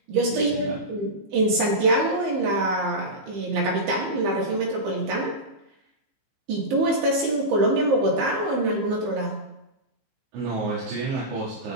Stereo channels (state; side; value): late; left; 15 ms